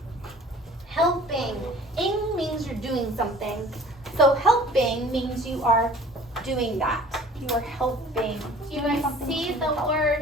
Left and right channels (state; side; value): normal; both; correlation 0.48